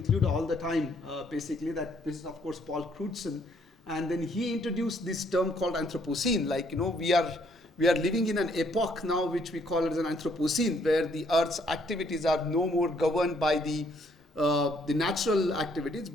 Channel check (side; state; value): both; normal; correlation 0.67